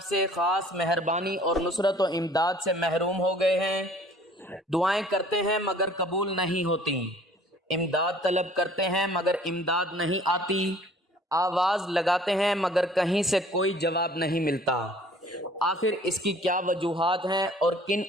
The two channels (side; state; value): both; normal; correlation 0.53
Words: سے خاص مہربانی اور نصرت و امداد سے محروم ہو گئے ہیں۔ دعائیں کرتے ہیں مگر قبول نہیں ہوتی، امداد طلب کرتے ہیں مگر امداد نہیں آتی، آواز لگاتے ہیں مگر کہیں سے کوئی جواب نہیں ملتا۔ آخر اس کی کیا وجوہات ہیں اور کن